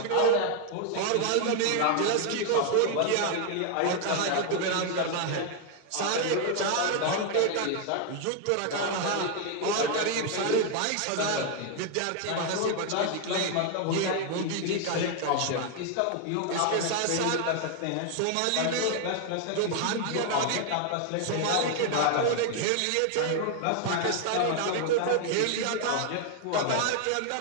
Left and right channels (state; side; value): different; both; correlation 0.00